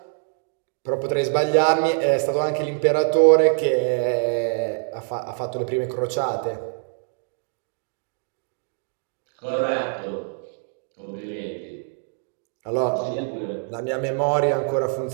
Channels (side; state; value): left; silent; 62 dB below the other